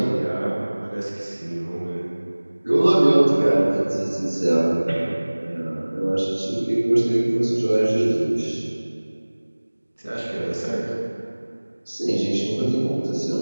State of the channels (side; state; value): both; inverted; correlation -1.00